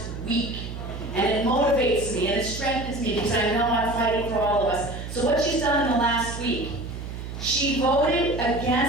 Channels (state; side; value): noise; right; hum, 8 dB below the sound